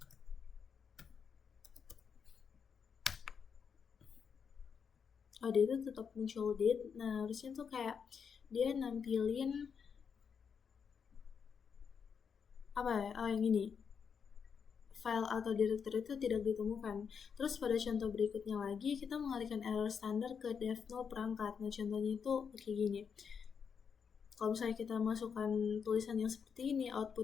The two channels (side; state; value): right; quieter; 6.6 dB